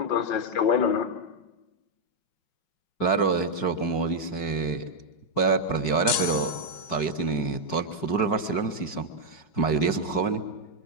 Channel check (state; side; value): late; right; 5.4 ms